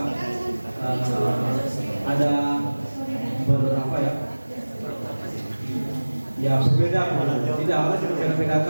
ada beberapa ya berbeda, tidak harus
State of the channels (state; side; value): inverted; both; correlation -1.00